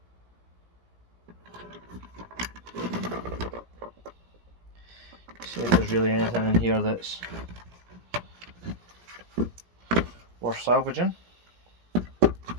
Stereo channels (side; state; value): left; late; 17 ms